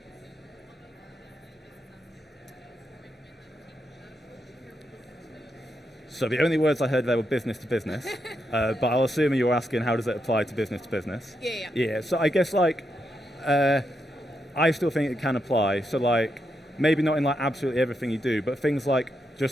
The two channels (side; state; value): both; normal; correlation 0.83